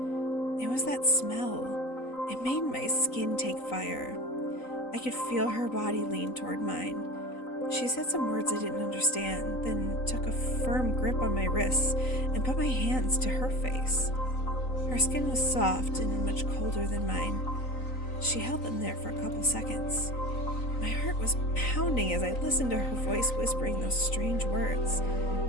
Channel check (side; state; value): right; late; 3.9 ms